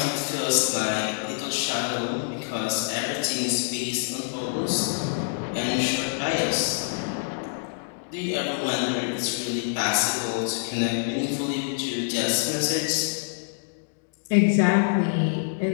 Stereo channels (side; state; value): right; silent; digital silence